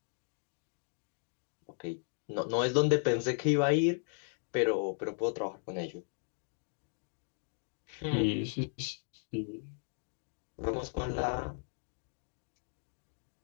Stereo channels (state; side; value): silent; right; 54 dB below the other